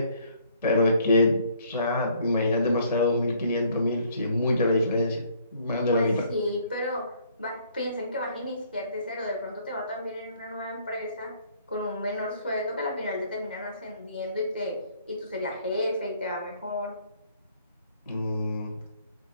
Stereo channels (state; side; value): inverted; both; correlation -0.62